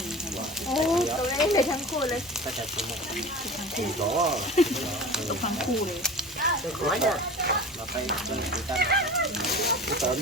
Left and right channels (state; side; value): normal; both; correlation 0.36